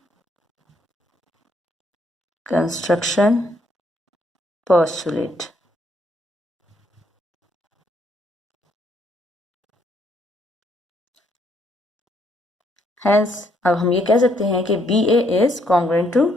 construction postulate. Hence, अब हम ये कह सकते हैं कि B A is congruent to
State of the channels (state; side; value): normal; both; correlation 0.70